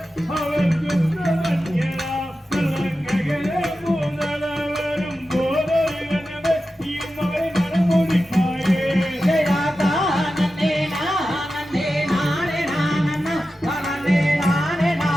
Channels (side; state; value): both; normal; correlation 0.92